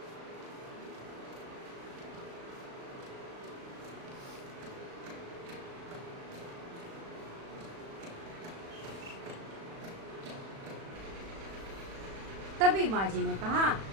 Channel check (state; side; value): late; left; 36 ms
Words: तभी माँ जी ने कहा,